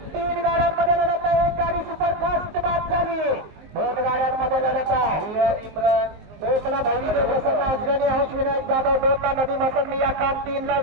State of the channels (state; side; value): late; left; 19 ms